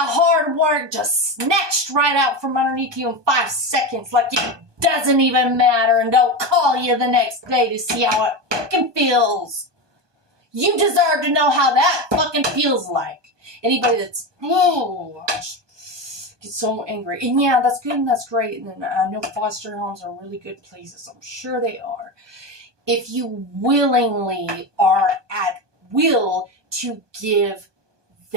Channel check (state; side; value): late; left; 1.2 ms